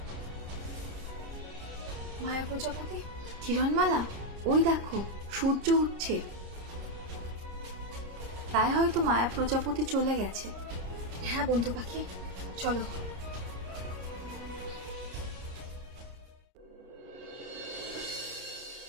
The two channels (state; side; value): late; left; 30 ms